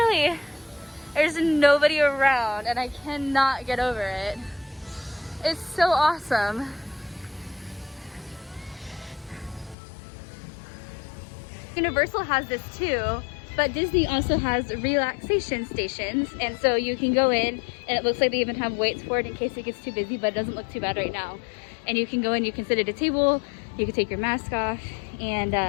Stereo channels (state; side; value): drops out; right; at 9.8 s